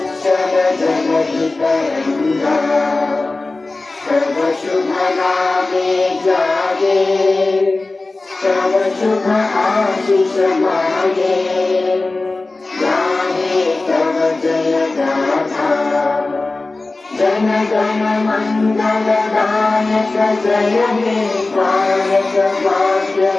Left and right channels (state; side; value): quieter; right; 3.3 dB